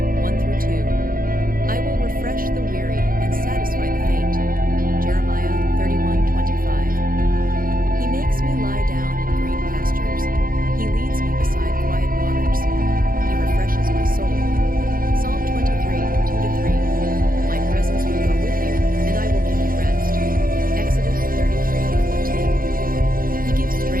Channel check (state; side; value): late; left; 0.41 ms